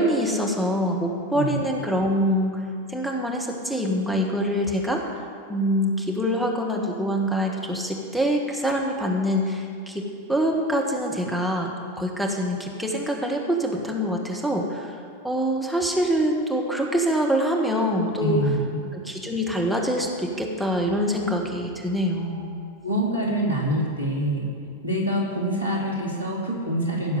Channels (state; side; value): normal; both; correlation 0.31